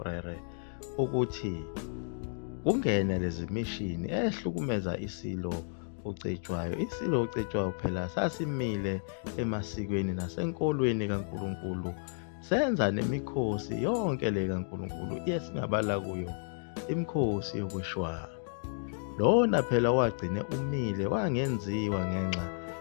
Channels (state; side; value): silent; right; digital silence